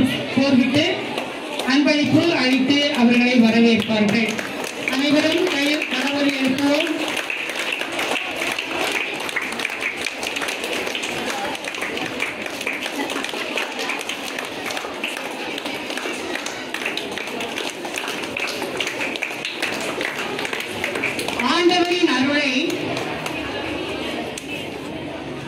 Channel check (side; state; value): both; identical; correlation 1.00